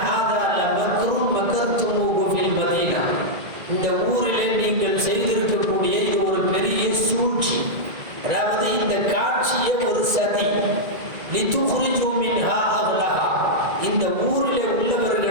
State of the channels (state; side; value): late; left; 1.9 ms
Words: ஹாதா லமக்ரும் மக்கர்துமூஹு ஃபில் மதீனா, இந்த ஊரிலே நீங்கள் செய்திருக்கக்கூடிய இது ஒரு பெரிய சூழ்ச்சி, அதாவது இந்த காட்சியை ஒரு சதி. லிதுக்ரிஜு மின்ஹா அஹ்லஹா, இந்த ஊரிலே